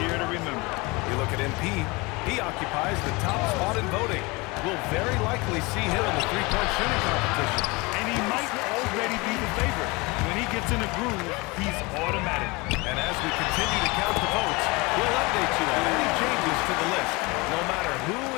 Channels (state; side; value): quieter; right; 25.3 dB